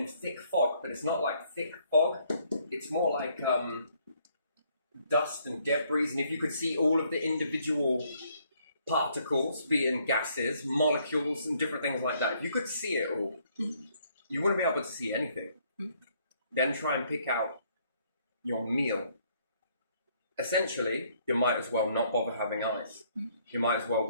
thick fog, but it's not like thick fog. It's more like dust and debris. And if you could see all of the individual particles, being gases, molecules, and different things like that, if you could see it all, you wouldn't be able to see anything. Then try and pick out your meal. Essentially, you might as well not bother having eyes. You might as well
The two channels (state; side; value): inverted; both; correlation -0.67